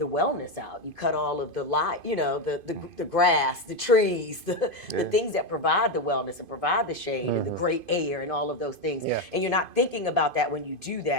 wellness out. You cut all of the light, you know, the grass, the trees, the things that provide the wellness and provide the shade and the great air and all of those things. Yeah. And you're not thinking about that when you do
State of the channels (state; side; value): late; right; 2.5 ms